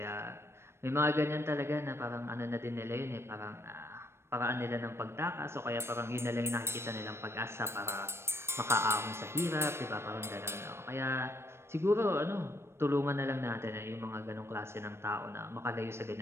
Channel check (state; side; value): late; left; 0.12 ms